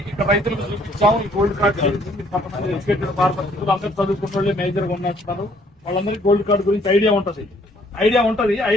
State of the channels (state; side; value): normal; both; correlation 0.63